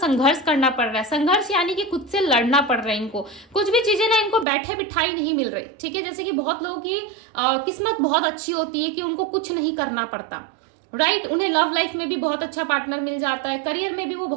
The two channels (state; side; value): drops out; left; at 4.5 s